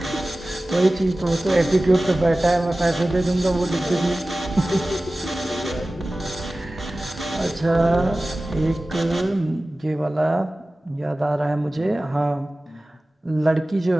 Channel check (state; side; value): normal; both; correlation 0.97